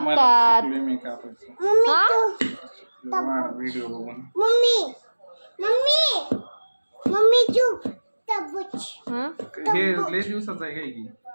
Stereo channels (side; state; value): both; inverted; correlation -1.00